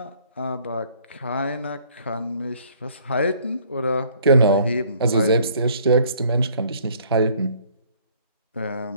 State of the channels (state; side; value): inverted; both; correlation -0.59